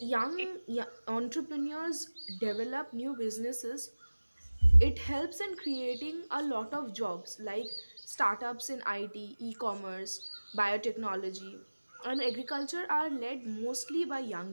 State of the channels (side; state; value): both; inverted; correlation -1.00